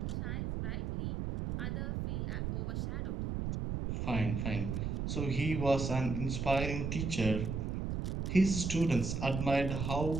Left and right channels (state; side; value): noise; right; rumble, 2 dB below the sound